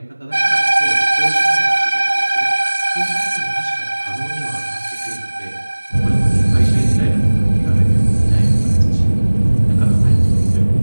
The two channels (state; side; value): inverted; both; correlation -1.00